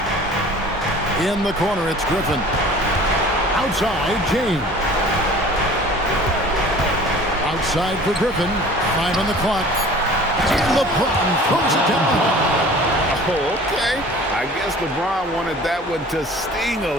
In the corner, it's Griffin. Outside, James. Outside for Griffin. 5 on the clock. And LeBron throws it down. Oh, okay. I guess LeBron wanted that one to sting a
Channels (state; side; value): normal; both; correlation 0.45